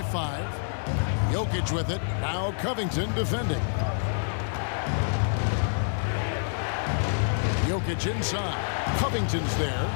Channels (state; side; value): silent; right; digital silence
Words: 5. Jokic with it. Now Covington defending. Jokic inside. Covington's there.